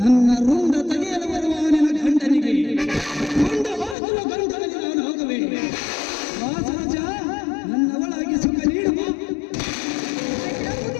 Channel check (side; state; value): right; drops out; at 4.0 s